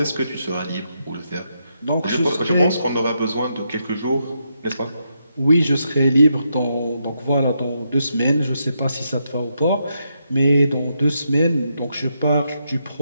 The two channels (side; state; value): both; inverted; correlation -0.81